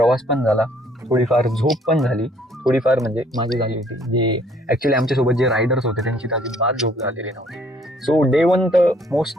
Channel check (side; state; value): both; normal; correlation 0.62